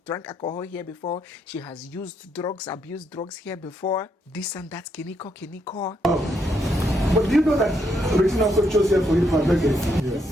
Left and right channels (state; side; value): normal; both; correlation 0.77